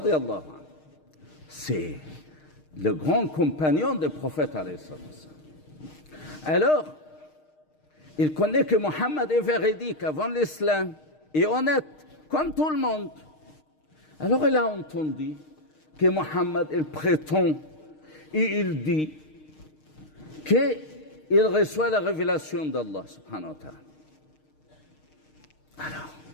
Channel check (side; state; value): right; late; 6.5 ms